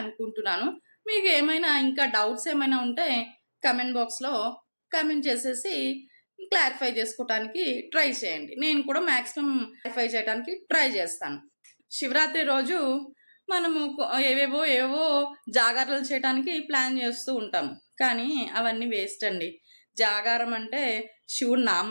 అనుకుంటున్నాను. మీకు ఏమైనా ఇంకా డౌట్స్ ఏమైనా ఉంటే కమెంట్ బాక్స్లో కమెంట్ చేసేసి క్లారిఫై చేసుకోవడానికి ట్రై చేయండి. నేను కూడా మ్యాక్సిమం క్లారిఫై చేయడానికి ట్రై చేస్తాను. శివరాత్రి రోజు మనము ఏవేవో జాగారాలు చేయడానికి ప్లాన్ చేస్తూ ఉంటాము, కానీ అవన్నీ వేస్ట్ అండి. జాగారం అంటే శివుడి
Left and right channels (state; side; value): inverted; both; correlation -1.00